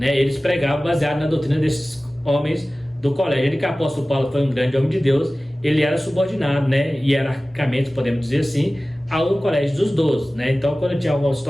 eles pregavam baseado na doutrina desses homens do colégio. Ele, que o apóstolo Paulo foi um grande homem de Deus, ele era subordinado, né, hierarquicamente, podemos dizer assim, ao colégio dos 12, né? Então quando tinha alguma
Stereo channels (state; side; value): normal; both; correlation 0.97